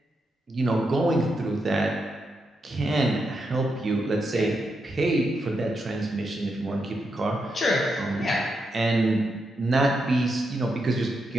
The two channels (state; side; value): normal; both; correlation 0.84